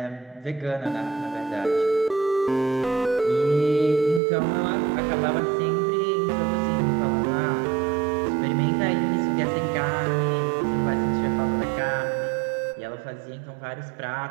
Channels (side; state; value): left; drops out; at 4.2 s